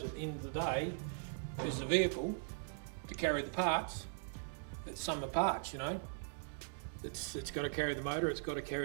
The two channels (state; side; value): silent; left; digital silence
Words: at the end of the day, is the vehicle to carry the parts. It's summer parts, you know. It's got to carry the motor. It's got to